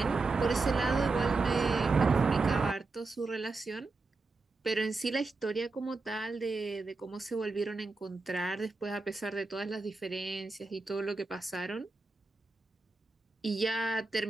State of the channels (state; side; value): quieter; left; 3.7 dB